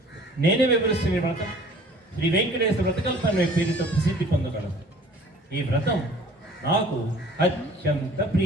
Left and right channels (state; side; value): normal; both; correlation 0.50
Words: నేనే వివరిస్తున్న వ్రతం శ్రీ వెంకటేశ్వర వ్రతకల్పన పేరుతో ప్రసిద్ధి పొందగలదు. ఈ వ్రతం నాకు అత్యంత